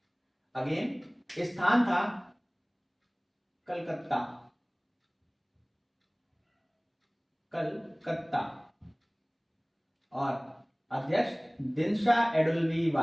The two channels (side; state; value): both; identical; correlation 1.00